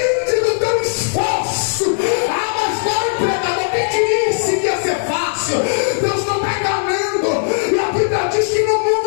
do teu esforço. Ah, mas vai, pregador, quem te disse que ia ser fácil? Deus não está enganando, e a Bíblia diz que no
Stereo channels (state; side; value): silent; right; 58 dB below the other